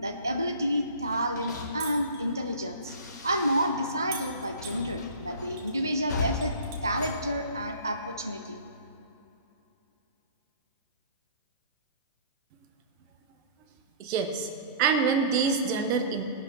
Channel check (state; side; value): inverted; both; correlation -0.43